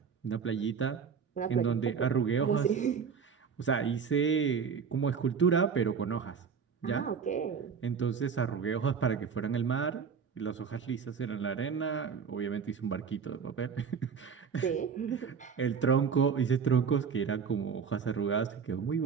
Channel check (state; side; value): quieter; left; 6.4 dB